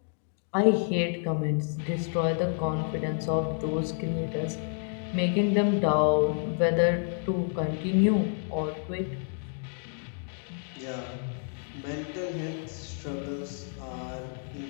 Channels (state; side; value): silent; right; 58 dB below the other